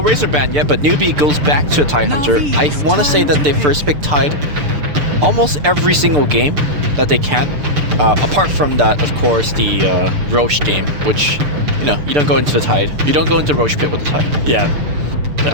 ban yet, but Newbee goes back to a Tide Hunter. I want to say that they first pick Tide almost every single game that they can. Apart from that, of course, the Roche game, which, you know, you don't go into the Tide. You don't go into Roche Pit with the Tide. Yeah.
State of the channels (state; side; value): late; left; 6.8 ms